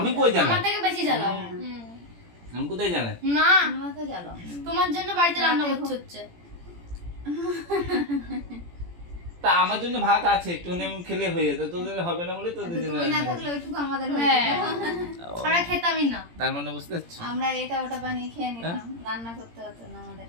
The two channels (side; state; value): left; late; 17 ms